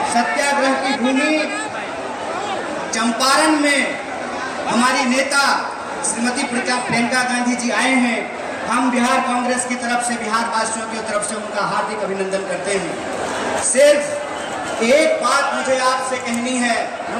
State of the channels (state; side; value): identical; both; correlation 1.00